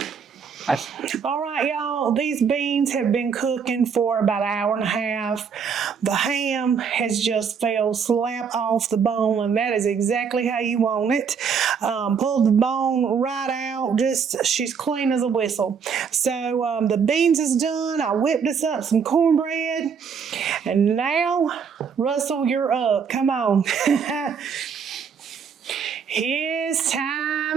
All right, y'all, these beans have been cooking for about an hour and a half. The ham has just fell slap off the bone, and that is exactly how you want it. Pulled the bone right out, she's clean as a whistle. So the beans is done. I whipped us up some cornbread, and now, Russell, you're up. Come on. His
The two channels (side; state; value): left; quieter; 6.5 dB